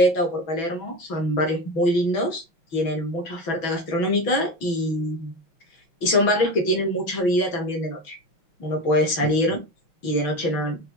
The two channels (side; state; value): right; late; 6.1 ms